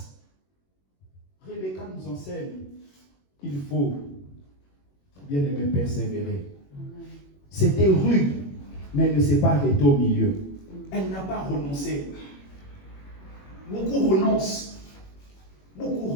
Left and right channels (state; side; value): late; right; 21 ms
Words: Rebecca nous enseigne qu'il faut, bien aimé, persévérer. C'était rude, mais elle ne s'est pas arrêtée au milieu. Elle n'a pas renoncé. Beaucoup renoncent. Beaucoup